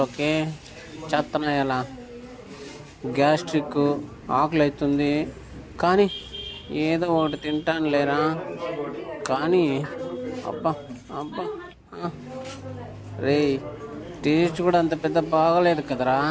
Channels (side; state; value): both; identical; correlation 1.00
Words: చేత్తనా ఎలా? గ్యాస్ట్రిక్, ఆకలి అవుతుంది. కానీ ఏదో ఒకటి తింటాను లేరా. కానీ అబ్బా అబ్బా, రే టేస్ట్ కూడా అంత పెద్ద బాగలేదు కదరా.